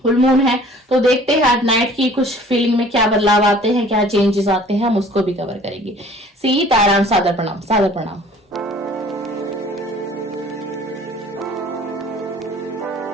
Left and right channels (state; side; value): normal; both; correlation 0.51